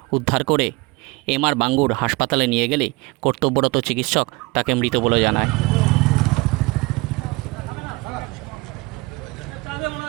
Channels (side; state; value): left; quieter; 24.0 dB